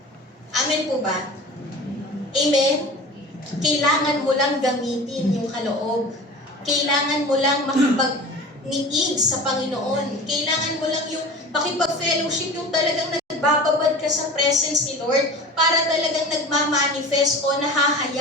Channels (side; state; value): both; normal; correlation 0.37